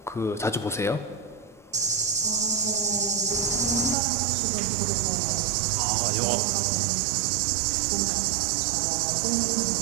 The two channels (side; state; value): left; drops out; at 4.0 s